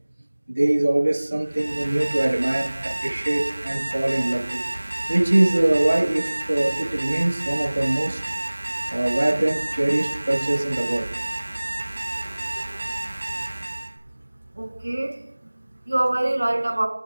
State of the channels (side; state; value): both; inverted; correlation -1.00